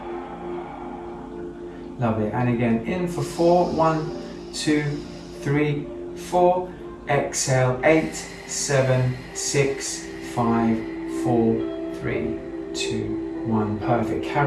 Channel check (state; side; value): identical; both; correlation 1.00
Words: Lovely. And again, in for 4, 1, 2, 3, 4. Exhale, 8, 7, 6, 5, 4, 3, 2, 1. Perfect.